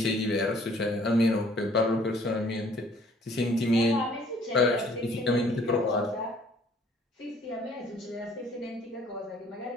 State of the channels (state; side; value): normal; both; correlation 0.58